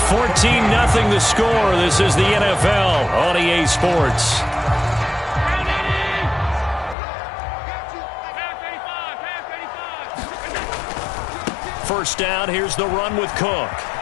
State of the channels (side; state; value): right; drops out; at 7.0 s